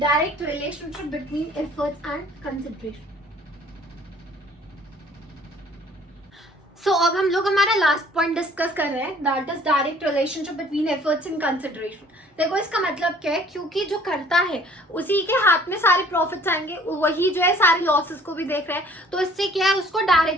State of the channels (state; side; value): normal; both; correlation 0.55